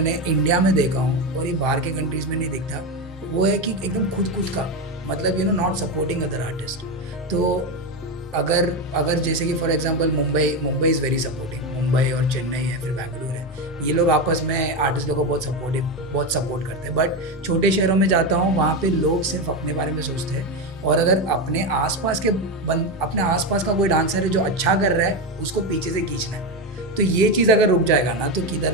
इंडिया में देखा हूँ और ये बाहर के कंट्रीज़ में नहीं दिखता, वो है कि एकदम खुद का, मतलब नॉट सपोर्टिंग अदर आर्टिस्ट। तो अगर अगर जैसे कि for example Mumbai is very supporting, Mumbai और चेन्नई है, फिर बैंगलोर है, ये लोग आपस में आर्टिस्ट लोगों को बहुत सपोर्ट करते हैं। बट छोटे शहरों में जाता हूँ, वहाँ पे लोग सिर्फ अपने बारे में सोचते हैं, और अगर अपने आसपास का कोई डांसर है जो अच्छा कर रहा है, उसको पीछे से खींचना है। तो ये चीज़ अगर रुक जाएगा ना, तो किधर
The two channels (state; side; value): normal; both; correlation 0.14